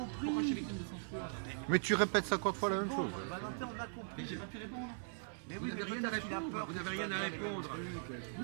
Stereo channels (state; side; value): silent; left; 51 dB below the other